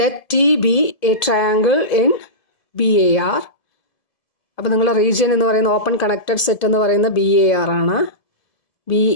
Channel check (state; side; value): late; right; 1.7 ms